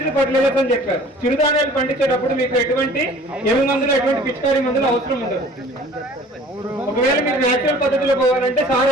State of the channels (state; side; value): normal; both; correlation 0.49